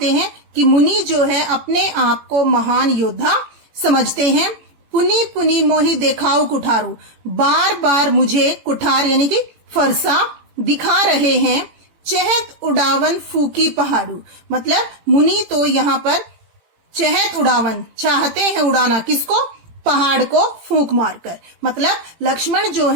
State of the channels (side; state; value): left; late; 18 ms